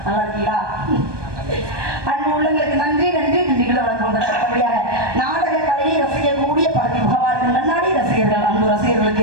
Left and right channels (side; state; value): left; late; 1.2 ms